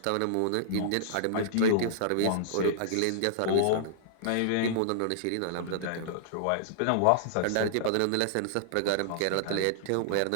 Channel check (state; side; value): different; both; correlation -0.01